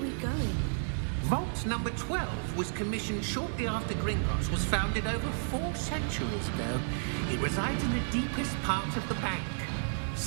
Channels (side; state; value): left; silent; 56 dB below the other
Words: going? Vault number 12 was commissioned shortly after Gringotts was founded over 4 centuries ago. It resides in the deepest part of the bank.